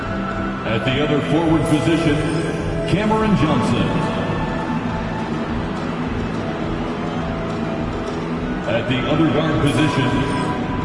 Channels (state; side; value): identical; both; correlation 1.00